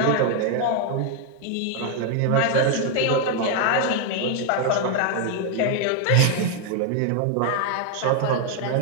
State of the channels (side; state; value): both; different; correlation 0.00